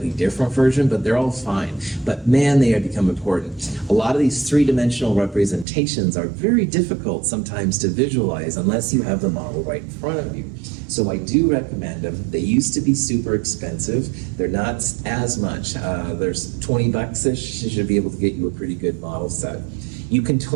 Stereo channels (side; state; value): left; drops out; at 5.7 s